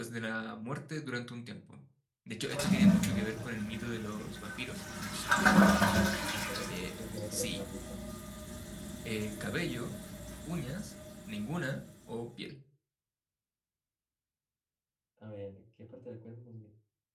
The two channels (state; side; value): identical; both; correlation 1.00